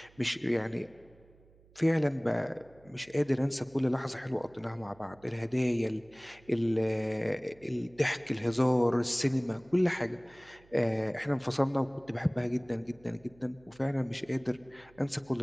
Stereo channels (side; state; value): right; noise; hum, 27 dB below the sound